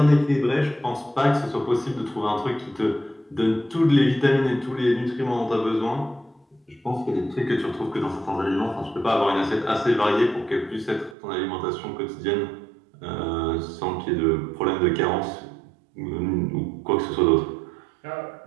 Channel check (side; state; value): left; drops out; at 11.2 s